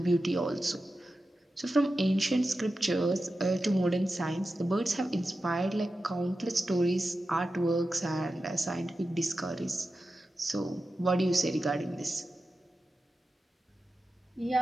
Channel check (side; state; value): both; normal; correlation 0.92